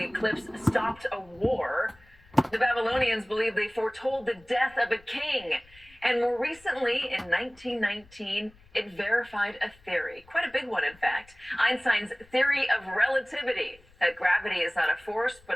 eclipse stopped a war. The Babylonians believed they foretold the death of a king. And more recently, in 1919, it verified a theory, quite a big one, in fact, Einstein's theory of relativity, that gravity is not a force,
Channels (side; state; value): left; noise; rumble, 27 dB below the sound